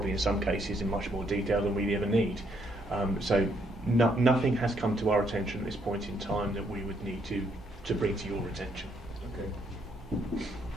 in some cases in much more detail than we ever need. So nothing has come to our attention at this point in time that we would need to bring to your attention. Okay.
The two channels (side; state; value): both; normal; correlation 0.72